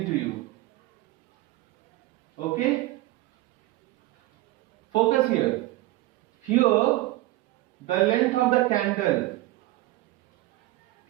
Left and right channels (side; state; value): left; quieter; 17.9 dB